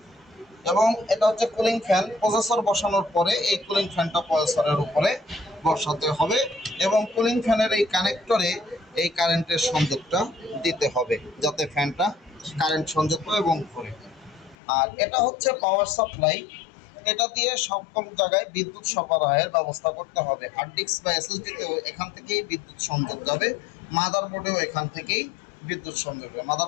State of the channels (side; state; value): right; drops out; at 14.6 s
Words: এবং এটা হচ্ছে কুলিং ফ্যান। প্রসেসর বসানোর পরে এই কুলিং ফ্যানটা প্রসেসরের উপরে বসাতে হবে এবং কুলিং ফ্যানের এই কানেক্টরে এই কারেন্টের সংযোগটা দিতে হবে যাতে ফ্যানটা কারেন্ট সংযোগ পায় এবং ঘুরে। আর এটা হচ্ছে পাওয়ার সাপ্লাই। এটা দিয়ে সকল জায়গায় বিদ্যুৎ সরবরাহের ব্যবস্থা করতে হবে। হার্ড ডিস্ক বা এসএসডিতেও এখান থেকেই বিদ্যুৎ সংযোগ যাবে, মাদারবোর্ডেও এখান থেকেই বিদ্যুৎ সংযোগ যাবে।